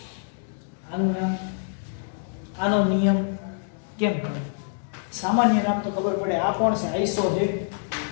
આનું નામ આનો નિયમ કેમ કરે સામાન્ય નામ તો ખબર પડે આ કોણ છે આઈસો છે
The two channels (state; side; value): silent; right; 61 dB below the other